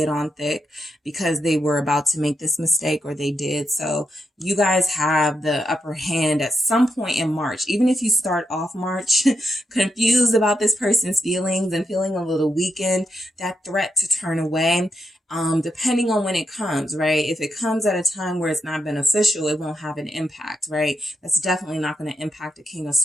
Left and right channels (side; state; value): both; normal; correlation 0.83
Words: it on thick because they were about to make this mistake, or they did. So you guys have the upper hand at some point in March. Even if you start off March confused about this person's feelings and feeling a little weakened, that threat to turn away, depending on when it comes, right? If it comes at a time where it's not beneficial, it won't have an impact, right? That's definitely not going to impact a King of